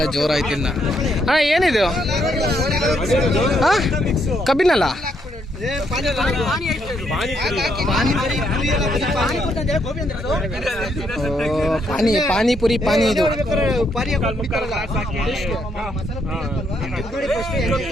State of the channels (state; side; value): normal; both; correlation 0.75